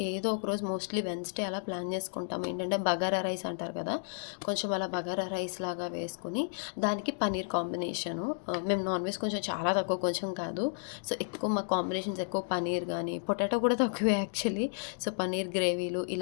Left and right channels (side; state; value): right; silent; digital silence